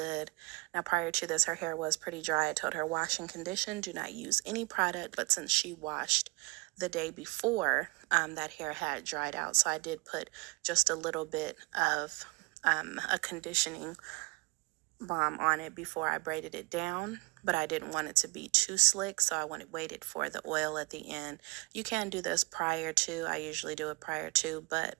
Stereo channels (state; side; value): quieter; left; 26.2 dB